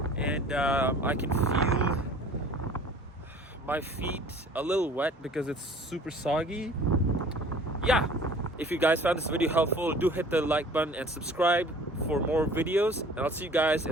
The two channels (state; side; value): normal; both; correlation 0.48